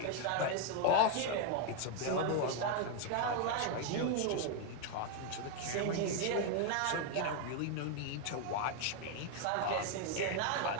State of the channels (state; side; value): different; both; correlation 0.01